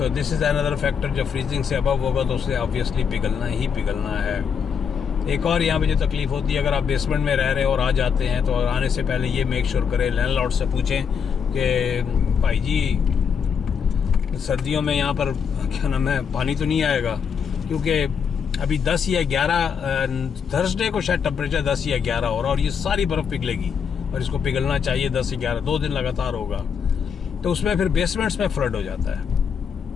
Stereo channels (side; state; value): right; quieter; 6.9 dB